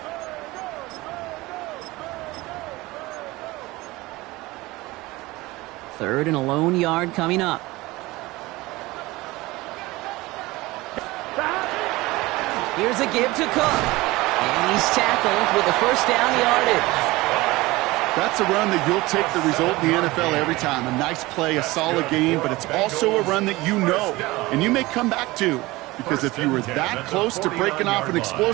Third and a lone yard coming up. Here's a give to Cook. And he's tackled with the first down yardage. That's a run that you'll take the result in the NFL every time. A nice play, a solid game, but it's also a run that you know and you may come back to. Because if you were that close to breaking off an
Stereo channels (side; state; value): left; quieter; 20.4 dB